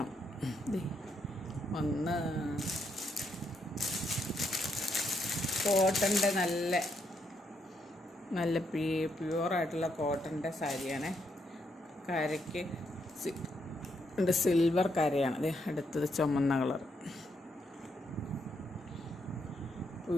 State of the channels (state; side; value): normal; both; correlation 0.77